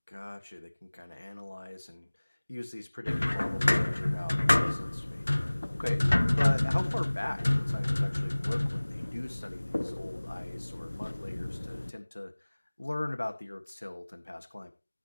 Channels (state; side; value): inverted; both; correlation -1.00